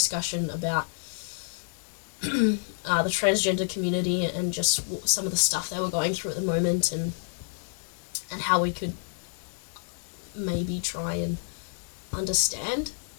about the transgender community and just some of the stuff they were going through at the moment, and how we could maybe try and understand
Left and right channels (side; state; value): right; silent; digital silence